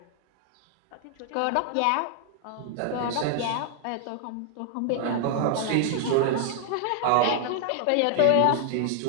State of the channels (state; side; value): different; both; correlation 0.00